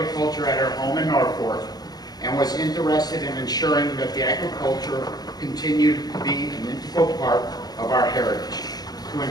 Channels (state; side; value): late; right; 0.19 ms